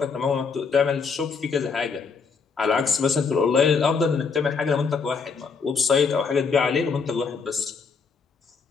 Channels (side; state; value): right; quieter; 5.3 dB